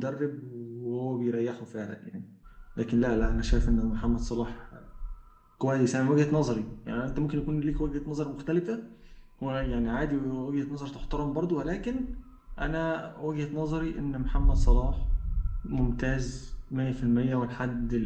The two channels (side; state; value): both; identical; correlation 1.00